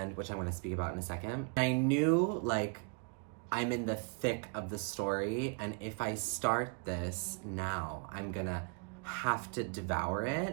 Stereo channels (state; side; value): quieter; left; 38.8 dB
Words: which I'm going to speak about in a second. I knew like I'm in the thick of the story, and if I start this now, I'm gonna have to devour it.